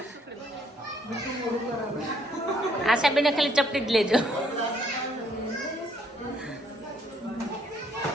આશાબેને ખાલી ચપટી જ લેજો.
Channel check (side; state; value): both; normal; correlation 0.66